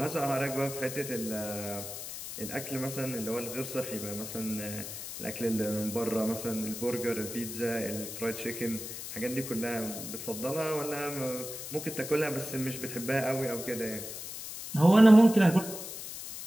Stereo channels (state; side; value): noise; left; hiss, 9 dB below the sound